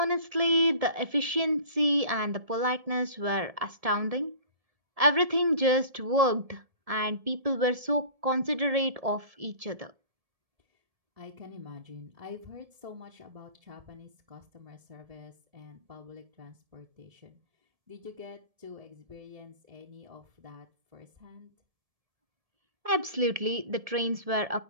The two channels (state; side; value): late; left; 1.7 ms